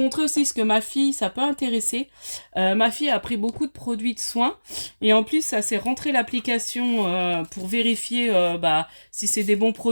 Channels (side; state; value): both; inverted; correlation -1.00